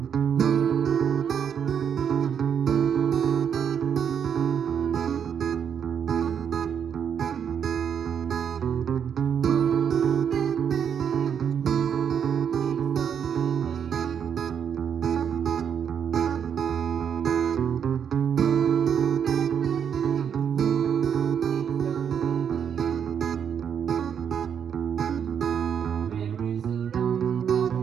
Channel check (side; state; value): left; quieter; 7.9 dB